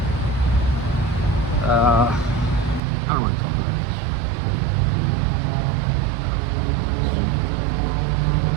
I don't want to talk about that shit.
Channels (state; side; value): drops out; left; at 2.8 s